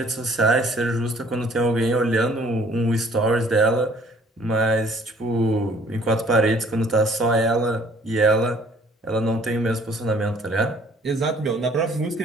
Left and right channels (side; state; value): both; normal; correlation 0.58